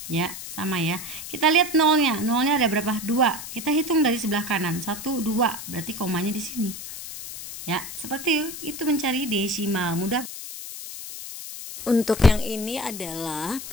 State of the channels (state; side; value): noise; left; hiss, 10 dB below the sound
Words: Ya, sama ya. Kita lihat nolnya. Nolnya ada berapa? 2. Kita hitung dari sebelah kanan. 1, 2. Berarti komanya di sini. Ya, seperti itu mencari desimal. Mudah. Untuk yang ini adalah